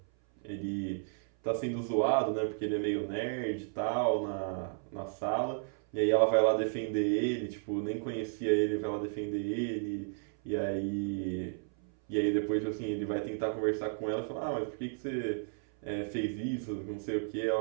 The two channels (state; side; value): silent; left; 56 dB below the other